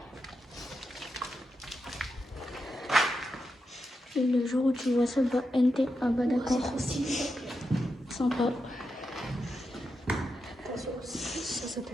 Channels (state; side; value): normal; both; correlation 0.87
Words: Et le jour où tu vois ça, bah NT, ah bah d'accord. Sympa. Ça